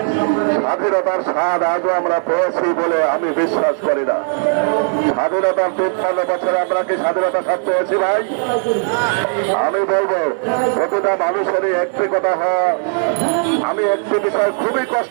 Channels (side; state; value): left; silent; 56 dB below the other